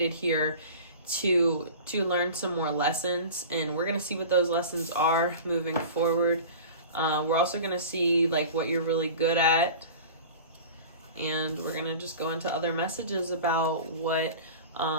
here to learn some more lessons. And we're going to see what those lessons are moving forward. We're also going to see, like, what you're really good at. And we're going to just go into other messages about what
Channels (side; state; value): both; inverted; correlation -0.36